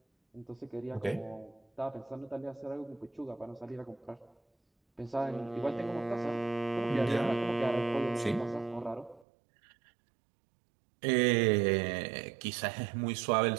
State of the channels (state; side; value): drops out; left; at 9.2 s